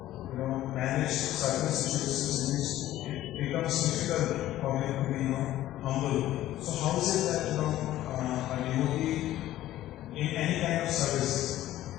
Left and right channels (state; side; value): quieter; right; 14.2 dB